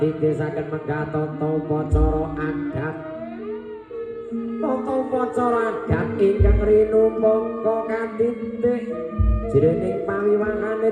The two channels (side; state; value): both; identical; correlation 1.00